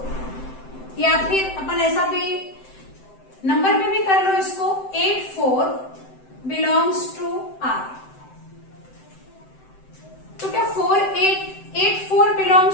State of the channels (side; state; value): right; late; 7.8 ms